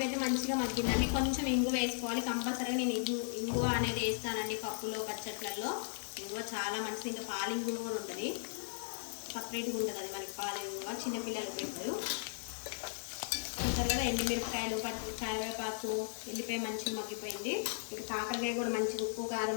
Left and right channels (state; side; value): silent; right; digital silence